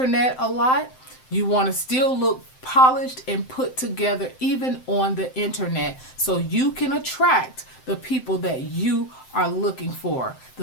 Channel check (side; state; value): right; late; 7.7 ms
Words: a lot, you want to still look polished and put together even on the internet, so you can attract the people that you are looking for,